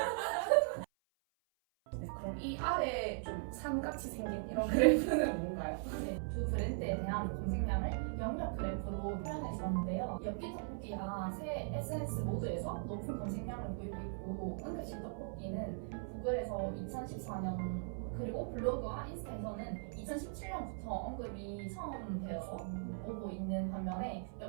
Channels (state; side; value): silent; left; 52 dB below the other